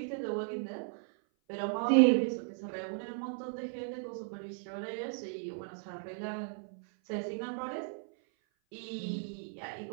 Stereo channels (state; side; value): silent; left; 54 dB below the other